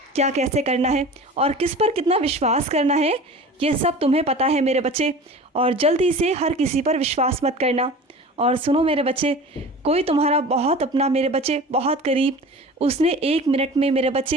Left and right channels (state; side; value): normal; both; correlation 0.38